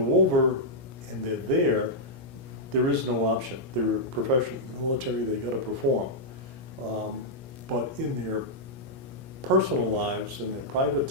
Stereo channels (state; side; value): late; left; 17 ms